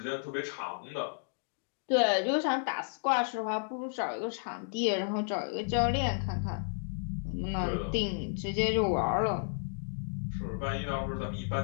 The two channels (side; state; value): right; silent; digital silence